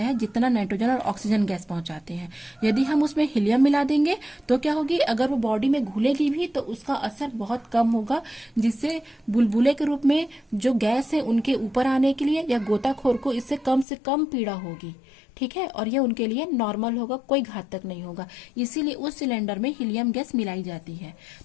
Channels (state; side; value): drops out; right; at 13.9 s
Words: है जितना नाइट्रोजन और ऑक्सीजन गैस पहुंचाते हैं। यदि हम उसमें हीलियम मिला देंगे तो क्या होगी? अगर वो बॉडी में घुलेगी भी तो उसका असर बहुत कम होगा, जिससे बुलबुले के रूप में जो गैस है उनके ऊपर आने के लिए या गोताखोर को इससे कम से कम पीड़ा होगी, ठीक है। और ये उनके लिए नॉर्मल होगा, कोई घातक नहीं होगा। इसीलिए उस सिलेंडर में हीलियम गैस मिलाई जाती है।